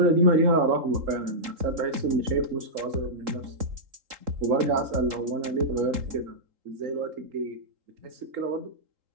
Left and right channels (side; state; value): left; late; 3.8 ms